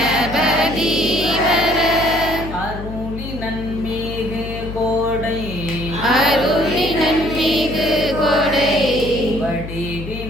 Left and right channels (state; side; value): noise; left; hum, 9 dB below the sound